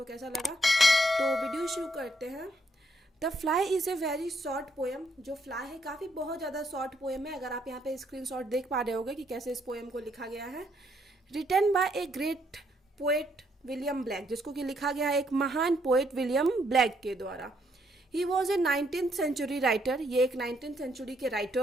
कैसा लगा। तो वीडियो शुरू करते हैं। The fly is a very short poem. जो फ्लाई है काफ़ी बहुत ज़्यादा शॉर्ट पोएम है। अगर आप यहाँ पे स्क्रीनशॉट देख पा रहे होगे कि कैसे इस पोएम को लिखा गया है। Written by a great poet William Blake, जिसको कि लिखा गया है एक महान पोएट विलियम ब्लैक के द्वारा। He was a 19th century writer. ये एक 19th सेंचुरी के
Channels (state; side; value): normal; both; correlation 0.73